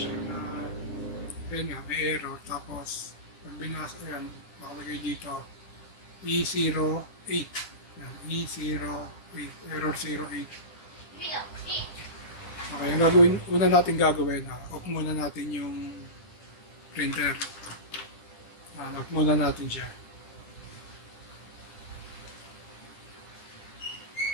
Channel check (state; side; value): late; right; 10 ms